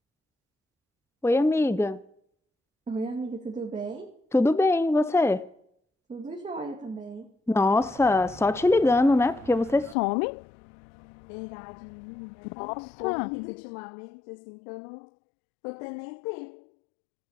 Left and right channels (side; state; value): right; drops out; at 10.0 s